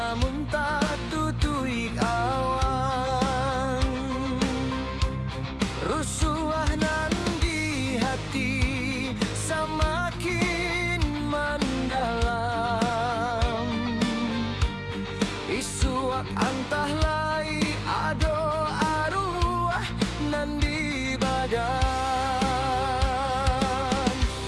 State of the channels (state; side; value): identical; both; correlation 1.00